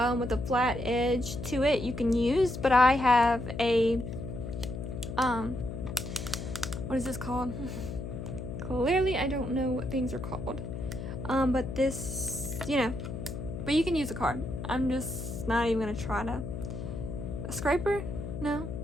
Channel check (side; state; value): left; noise; hum, 7 dB below the sound